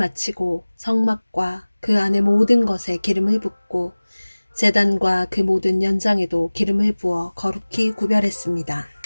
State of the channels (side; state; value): both; inverted; correlation -1.00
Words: 성막과 그 안의 모든 것에 기름을 붓고 제단과 그 모든 연장에도 기름을 부어 거룩히 구별했습니다.